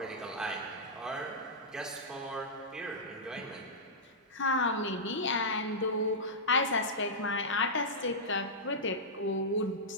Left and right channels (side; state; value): both; normal; correlation -0.12